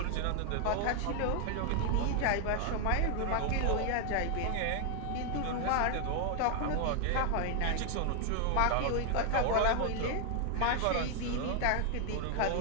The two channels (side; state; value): both; different; correlation 0.00